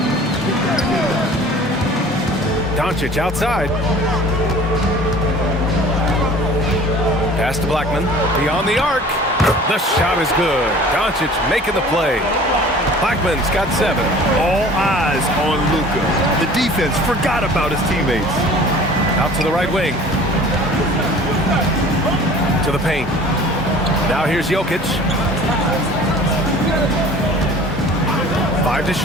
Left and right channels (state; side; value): normal; both; correlation 0.46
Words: Doncic outside. Pass to Blackman. Beyond the arc. The shot is good. Doncic making the play. Blackman's got 7. All eyes on Luka. The defense forgot about his teammates. Out to the right wing. To the paint. Now here's Jokic. 5 to